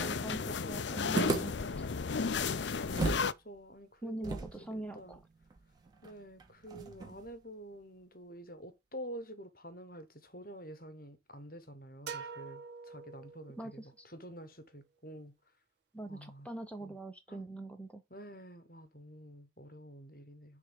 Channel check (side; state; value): both; normal; correlation 0.34